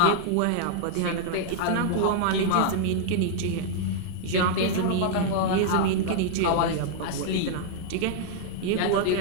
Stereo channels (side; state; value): both; different; correlation -0.01